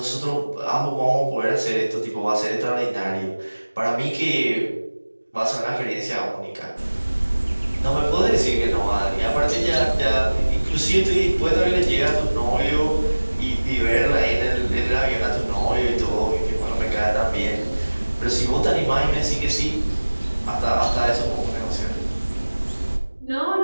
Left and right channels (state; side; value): inverted; both; correlation -1.00